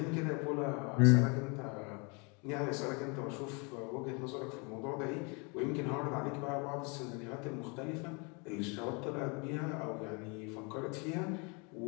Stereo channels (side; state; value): right; quieter; 31.8 dB